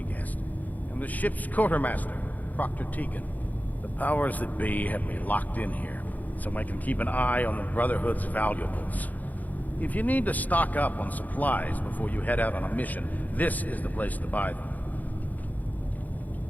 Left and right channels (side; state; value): right; late; 0.080 ms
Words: guessed, am the ship's quartermaster, Proctor Tegan. The powers that be have me locked in here, so I can keep an eye on the Brotherhood's valuables. If you need to stock up on supplies before you head out on a mission, this is the place to buy them.